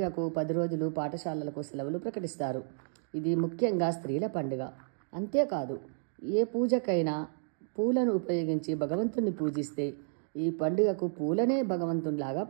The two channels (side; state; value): left; silent; digital silence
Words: 10 రోజులు పాఠశాలలకు సెలవులు ప్రకటిస్తారు. ఇది ముఖ్యంగా స్త్రీల పండుగ. అంతేకాదు, ఏ పూజకైనా పూలను ఉపయోగించి భగవంతుని పూజిస్తే ఈ పండుగకు పూలనే భగవంతునిలాగా